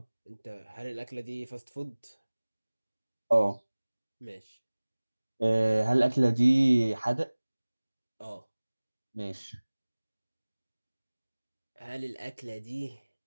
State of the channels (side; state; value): both; inverted; correlation -1.00